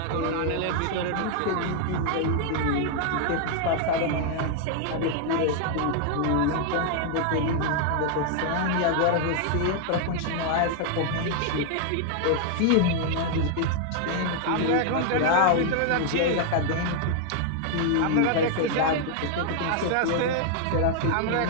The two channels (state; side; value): different; both; correlation 0.00